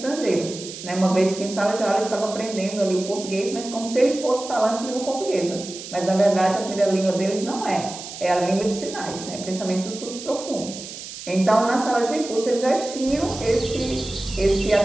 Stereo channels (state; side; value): noise; right; hiss, 11 dB below the sound